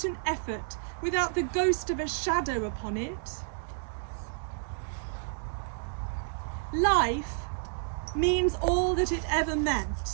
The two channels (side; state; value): left; silent; digital silence